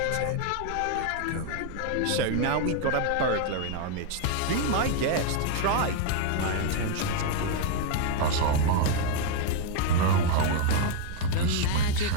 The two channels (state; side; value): different; both; correlation 0.00